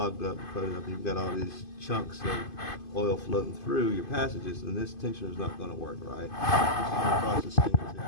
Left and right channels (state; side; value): late; right; 2.5 ms